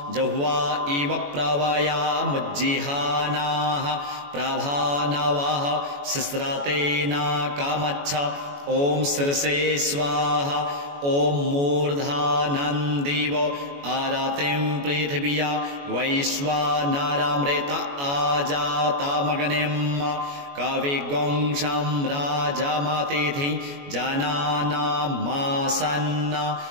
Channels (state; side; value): late; left; 21 ms